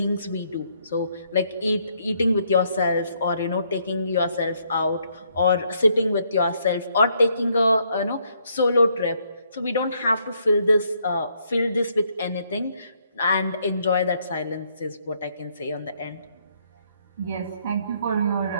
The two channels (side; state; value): both; inverted; correlation -0.72